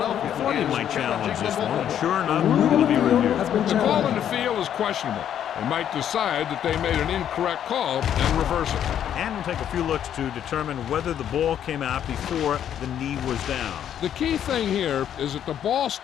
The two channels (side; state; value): right; quieter; 9.9 dB